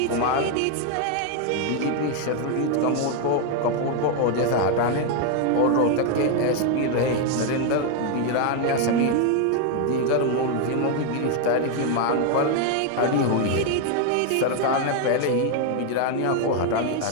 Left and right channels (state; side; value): different; both; correlation 0.01